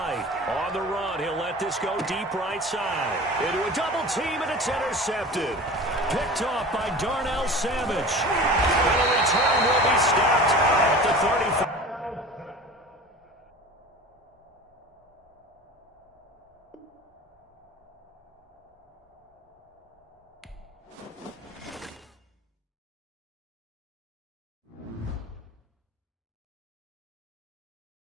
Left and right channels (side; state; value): both; normal; correlation 0.38